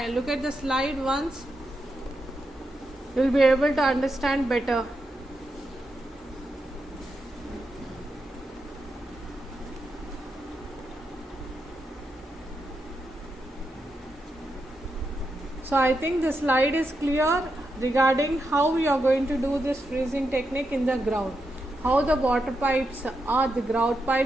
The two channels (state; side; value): normal; both; correlation 0.85